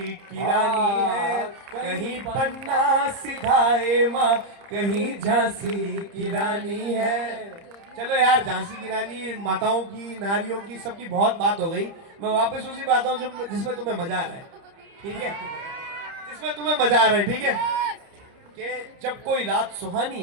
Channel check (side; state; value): left; late; 30 ms